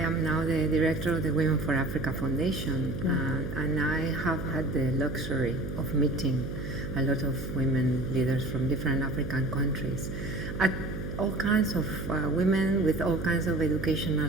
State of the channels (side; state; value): right; noise; hum, 6 dB below the sound